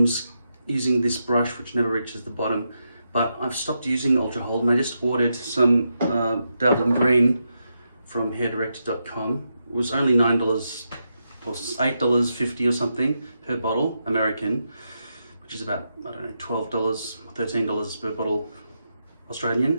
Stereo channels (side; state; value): both; inverted; correlation -0.85